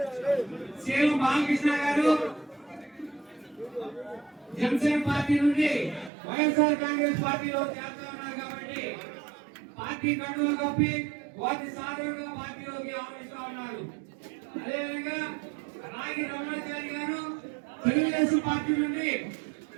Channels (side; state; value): left; drops out; at 6.1 s